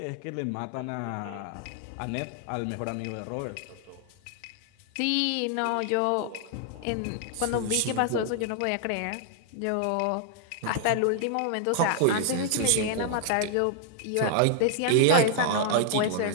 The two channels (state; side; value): different; both; correlation 0.00